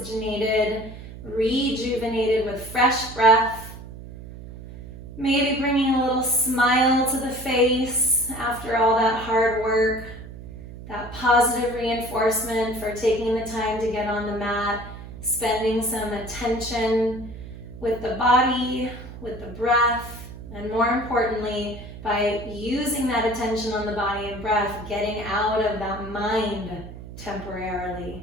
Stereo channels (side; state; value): right; noise; hum, 13 dB below the sound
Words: rejuvenated with fresh breath. Maybe bringing a little smile to the face after all that hard work, that positive reinforcement for taking the time to get on the mat, spending some attention with the body, with the breath, and more importantly, by using that attention on the body and breath, getting out of that mind temporarily.